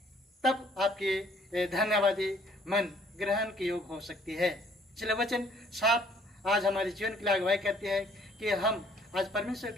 तब आपकी धन्यवादी मन ग्रहण के योग हो सकती है। इसलिए वचन साफ आज हमारे जीवन के लिए अगुवाई करती है कि हम आज परमेश्वर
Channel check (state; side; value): normal; both; correlation 0.61